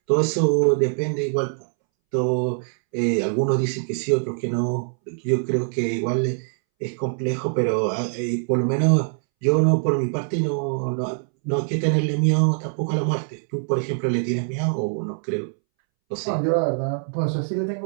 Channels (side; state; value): left; silent; 63 dB below the other